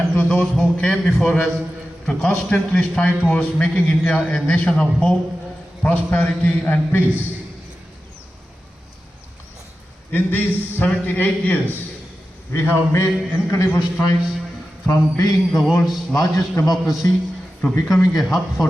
to those who came before us to constantly strive towards making India a nation of hope, prosperity and peace. In these 78 years, we have made incredible strides from being the world's largest democracy to becoming a hub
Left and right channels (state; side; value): normal; both; correlation 0.93